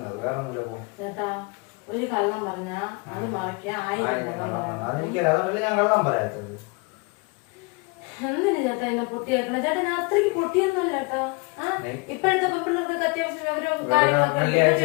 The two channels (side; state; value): right; quieter; 30.2 dB